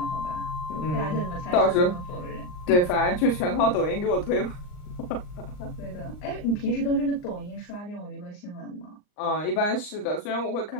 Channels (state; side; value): late; right; 39 ms